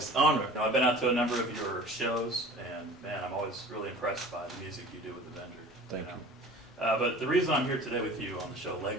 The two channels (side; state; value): both; normal; correlation 0.42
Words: honor. You know, I've been out to a number of your shows, and man, I'm always really impressed by the music you do with the Avenger. Thank you. But the reason I'm here today with you on the show